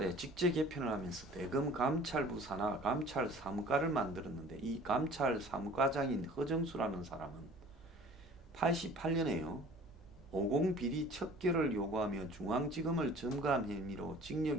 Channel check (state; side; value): normal; both; correlation 0.48